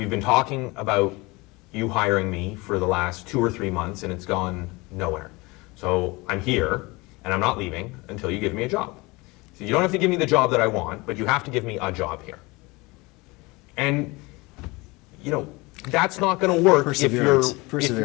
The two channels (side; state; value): right; quieter; 24.1 dB